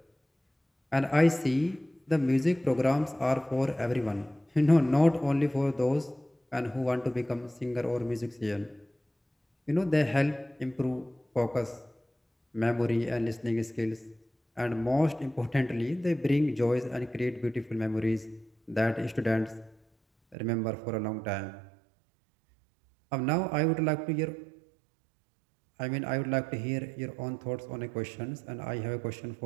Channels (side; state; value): left; drops out; at 20.4 s